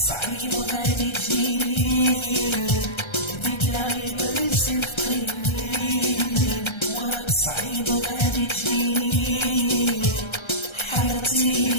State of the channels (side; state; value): right; late; 1.3 ms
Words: صعيب وغادي تجيني. بدت العين يصير خطيني وراك صعيب وغادي تجيني.